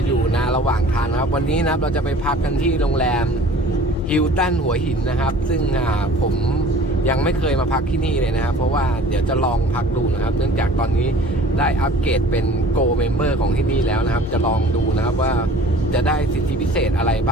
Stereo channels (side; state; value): both; normal; correlation 0.47